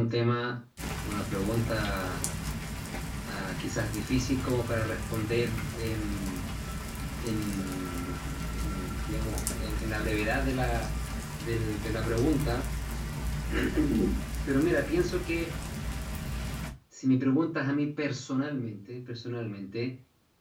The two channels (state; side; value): identical; both; correlation 1.00